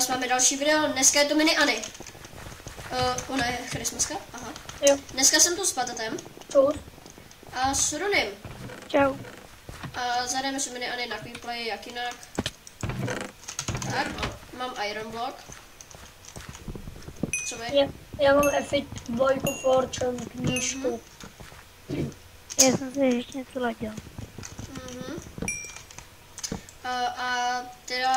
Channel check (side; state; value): both; identical; correlation 1.00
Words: máme další video, dneska je to mini Anny. Ona je Christmaska, aha. Jo. Dneska jsem tu s Patatem. Čus. A s Runym. Čau. A zahrajeme si mini Anny na Quick Play, jak jinak. Tak, mám Iron Block. Co vy? Já mám F2 Fortune knížku. Já jsem si ještě něco ladil. A